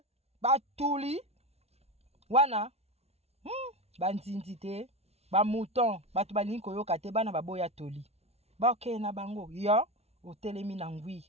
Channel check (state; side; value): late; left; 0.31 ms